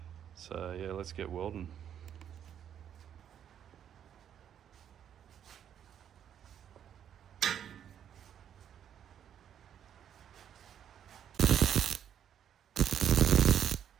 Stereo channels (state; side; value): quieter; left; 9.3 dB